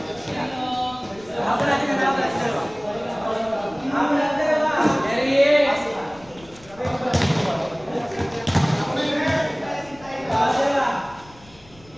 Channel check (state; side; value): noise; left; rumble, 24 dB below the sound